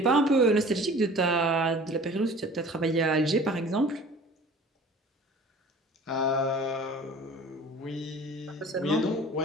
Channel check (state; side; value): normal; both; correlation 0.45